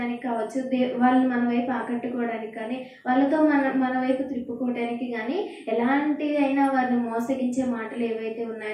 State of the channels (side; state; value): both; identical; correlation 1.00